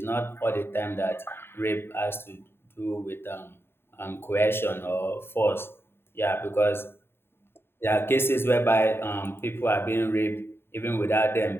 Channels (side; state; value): right; late; 0.11 ms